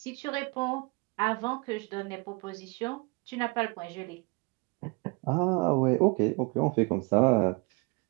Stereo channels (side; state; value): left; quieter; 28.7 dB